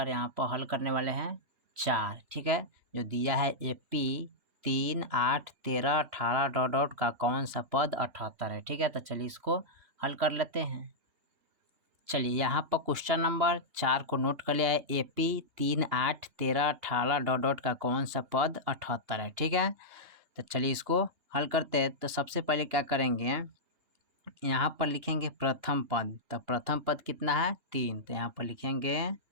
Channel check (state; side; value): late; left; 2.9 ms